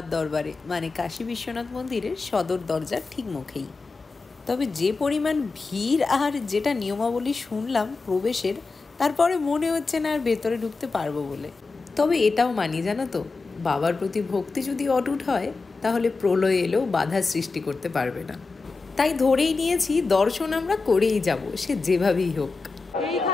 দরবারে, মানে কাশী বিশ্বনাথ মন্দিরের সদর দরজার ঠিক মুখেই। তবে যে পরিমাণ ভিড় আর যেটা নিয়মাবলী শুনলাম প্রবেশের, তারপরে মনে হচ্ছে না আর ভেতরে ঢুকতে পারবো বলে। তবে এটাও মানি, জানো তো, বাবার প্রতি ভক্তি যদি অটুট হয় তাহলে প্রলয় এলেও বাধা সৃষ্টি করতে পারবে না। তাই ধরেই নিয়েছি দর্শন আমরা করেই যাব, সে যেভাবেই হোক।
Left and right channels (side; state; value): right; quieter; 4.0 dB